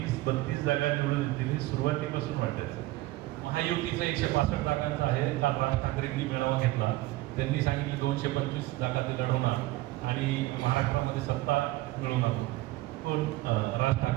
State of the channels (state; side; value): quieter; left; 18.3 dB